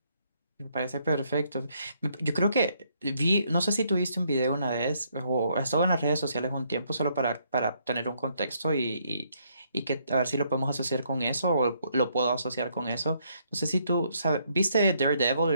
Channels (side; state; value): both; inverted; correlation -0.71